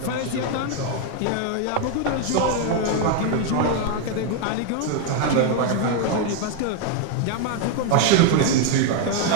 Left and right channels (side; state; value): both; different; correlation 0.01